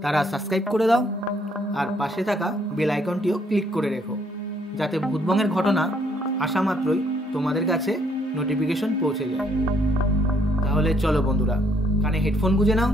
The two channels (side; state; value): both; normal; correlation 0.66